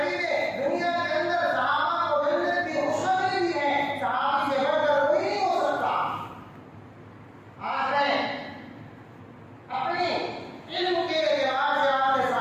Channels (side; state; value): both; identical; correlation 1.00